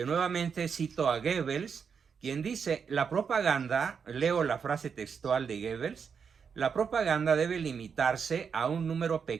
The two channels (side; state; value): left; quieter; 6.4 dB